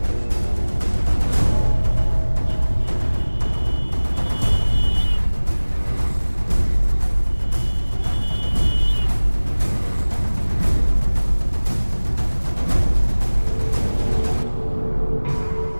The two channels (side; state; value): both; inverted; correlation -1.00